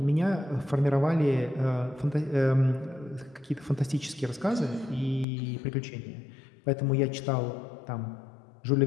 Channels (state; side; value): drops out; right; at 5.2 s